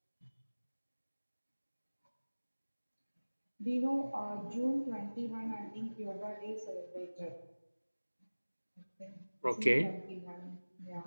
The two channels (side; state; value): both; inverted; correlation -1.00